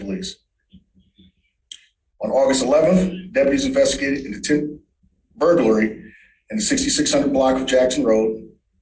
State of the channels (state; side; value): identical; both; correlation 1.00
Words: On August 11th, deputies investigated an attempted burglary in the 6600 block of Jackson Road.